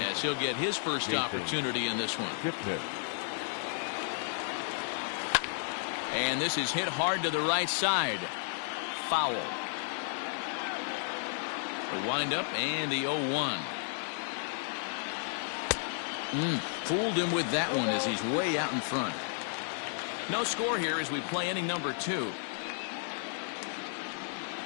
as he'll get his first opportunity in this one. And this is hit hard to the right side. Foul. The windup and the 0-1. Fooled him with that one as he's way out in front. No score here as we play inning number 2.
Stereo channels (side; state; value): right; silent; 56 dB below the other